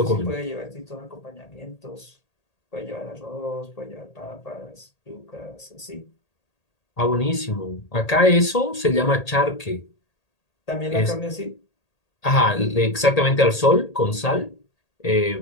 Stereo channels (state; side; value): late; right; 1.8 ms